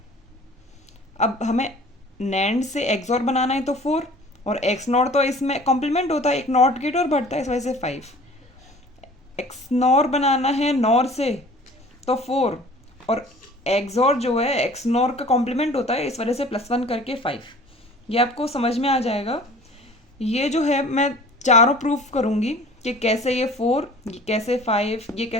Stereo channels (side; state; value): both; normal; correlation 0.46